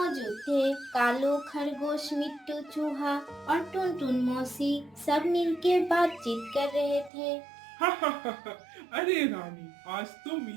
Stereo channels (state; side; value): drops out; left; at 7.1 s